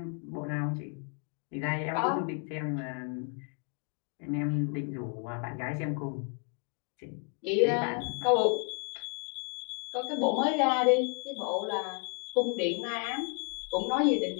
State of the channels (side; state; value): right; quieter; 38.9 dB